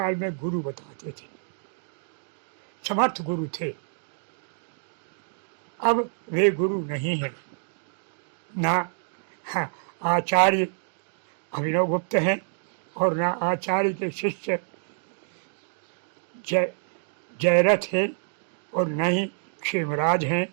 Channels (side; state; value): left; silent; digital silence